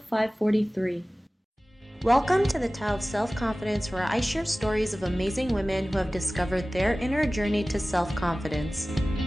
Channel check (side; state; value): both; normal; correlation 0.97